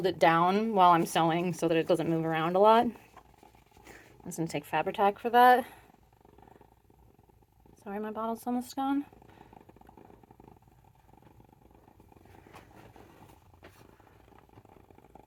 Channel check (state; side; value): identical; both; correlation 1.00